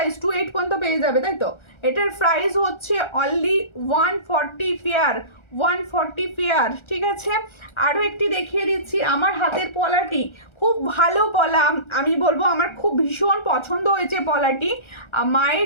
28 পর্যন্ত পেয়ে যাবে, তাই তো। এটার প্রাইস হচ্ছে অনলি 140 পেয়ার, 140 পেয়ার, ঠিক আছে। আরও একটি দেখিয়ে দিচ্ছি, আমার হাতের পলাটি, খুব ভালো পলা, আমি বলবো আমার খুব ভীষণ পছন্দ হয়েছে পলাটি।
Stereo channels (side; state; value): right; late; 1.3 ms